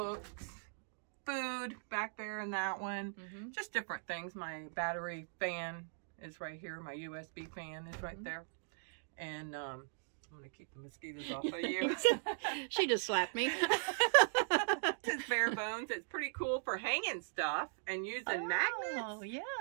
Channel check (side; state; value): left; silent; digital silence